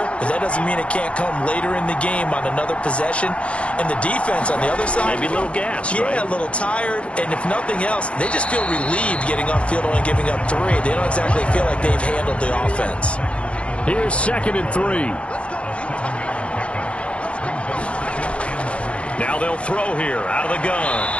but that doesn't mean it can't come later in the game on another possession. And the defense on the other side, maybe a little gas, yeah, right? A little tired. And if nothing else, they just feel relieved getting off field only giving up 3. They don't exactly feel like they've handled the offense. Here's 2nd and 3. Now they'll throw here out of the gun.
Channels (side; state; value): right; late; 0.061 ms